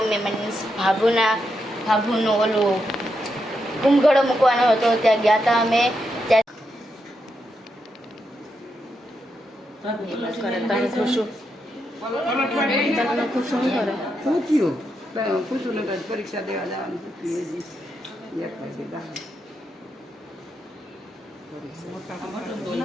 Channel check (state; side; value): normal; both; correlation 0.83